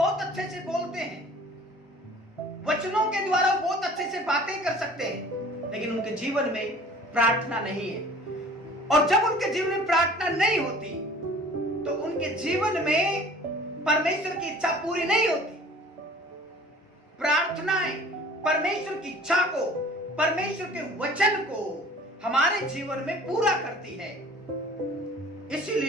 अच्छे से बोलते हैं, वचनों के द्वारा बहुत अच्छे से बातें कर सकते हैं, लेकिन उनके जीवन में प्रार्थना नहीं है। और जब उनके जीवन में प्रार्थना नहीं होती तो उनके जीवन में परमेश्वर की इच्छा पूरी नहीं होती। प्रार्थनाएं परमेश्वर की इच्छा को, परमेश्वर के वचन को हमारे जीवन में पूरा करती है।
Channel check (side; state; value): both; normal; correlation 0.48